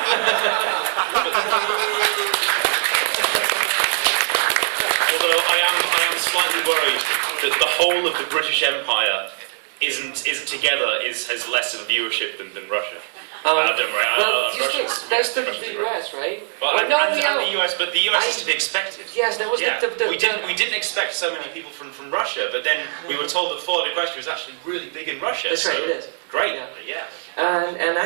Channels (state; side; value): silent; left; digital silence